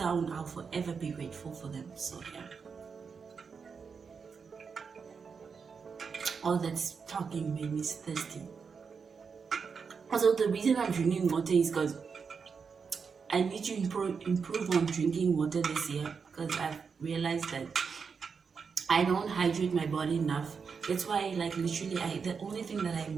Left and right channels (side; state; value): left; quieter; 5.7 dB